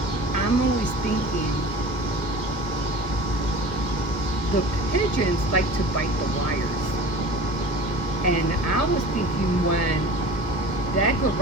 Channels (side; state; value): right; late; 1.5 ms